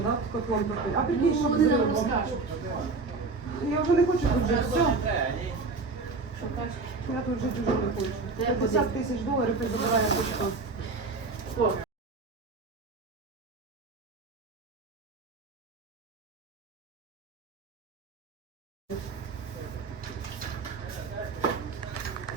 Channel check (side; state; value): left; quieter; 4.0 dB